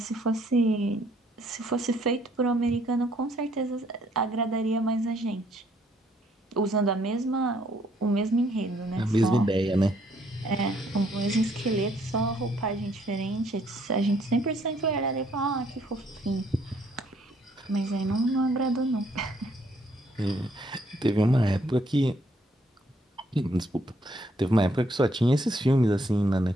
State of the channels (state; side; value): normal; both; correlation 0.67